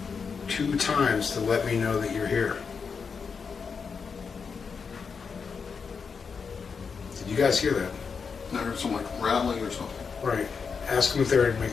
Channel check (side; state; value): right; quieter; 5.7 dB